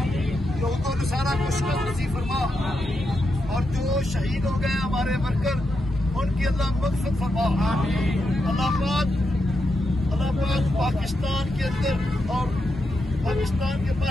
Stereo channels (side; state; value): both; normal; correlation 0.85